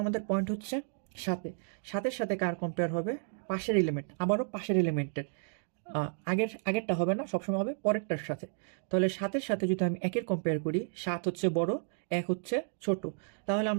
আমাদের পয়েন্ট হচ্ছে 7-এ। 7-এর সাথে কার কম্পেয়ার হবে? পাশের এলিমেন্ট, আবারও পাশের এলিমেন্টের। আগেরটা হবে না, সবসময় হবে পরেরটার সাথে। তাহলে 7-এর সাথে যদি আমি 1-এর কম্পেয়ার করি, 7 হচ্ছে বড়, 1 হচ্ছে ছোট। তাহলে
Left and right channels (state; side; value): silent; left; digital silence